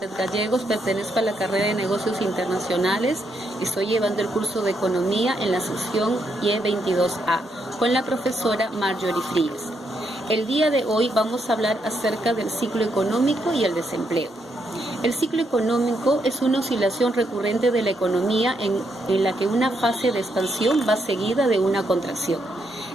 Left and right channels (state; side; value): normal; both; correlation 0.78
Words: Gallegos, pertenezco a la carrera de Negocios Internacionales. Estoy llevando el curso de Economía en la sección Y22A con la profesora Marjorie Fríes. El día de hoy vamos a hablar acerca del ciclo económico y el desempleo. El ciclo económico es una oscilación recurrente de la economía en la que una fase de expansión va seguida de una contracción.